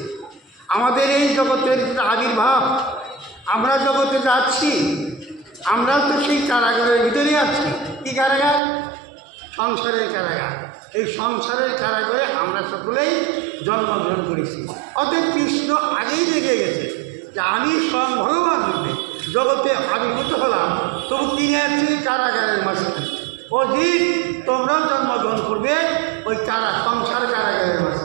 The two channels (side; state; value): left; drops out; at 8.6 s